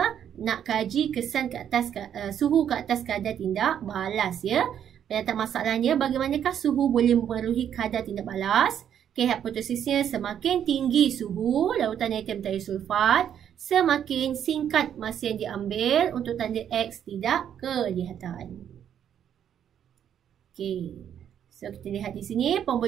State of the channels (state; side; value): quieter; left; 9.3 dB